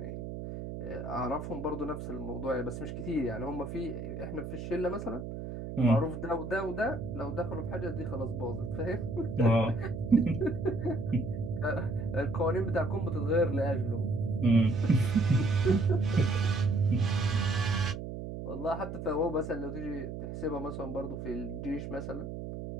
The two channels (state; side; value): noise; right; hum, 7 dB below the sound